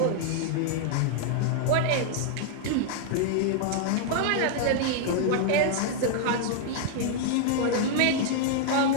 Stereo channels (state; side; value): different; both; correlation 0.00